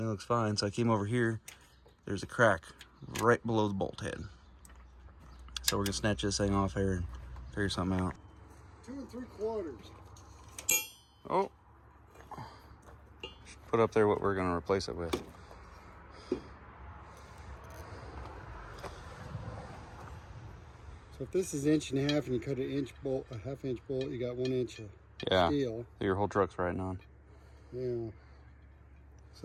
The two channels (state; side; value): identical; both; correlation 1.00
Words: looks fine. So I came over here, there's a crack right below the bolt head. So we're gonna snatch this thing off here and figure something out. 2 3/4. Oh. Put up there what we're gonna replace it with. So if this is 1.5 inches and you cut an inch bolt, a 1/2 inch bolt, you got 1 inch of steel. Your whole truck's riding on. Yeah.